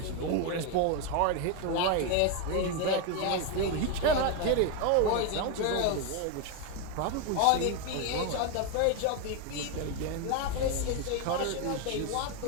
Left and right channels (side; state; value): both; different; correlation 0.02